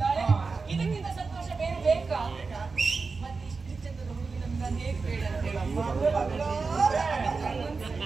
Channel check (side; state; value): left; quieter; 4.4 dB